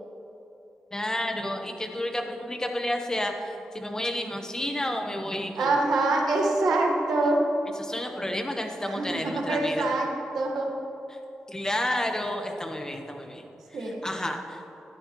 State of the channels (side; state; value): both; normal; correlation 0.85